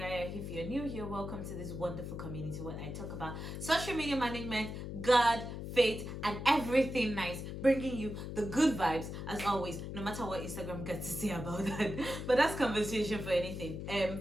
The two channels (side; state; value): left; noise; hum, 7 dB below the sound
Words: If you're new here, welcome to this wonderful community where I talk about social media management, God, faith, and everything nice, bringing you the good vibes as always, no matter what Instagram gets to say about that. But that's conversation for anything.